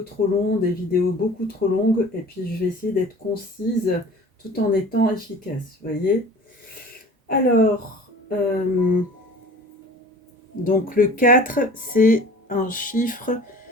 trop longs, des vidéos beaucoup trop longues et puis je vais essayer d'être concise tout en étant efficace, vous voyez. Alors, donc le 4, c'est un chiffre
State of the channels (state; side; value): normal; both; correlation 0.43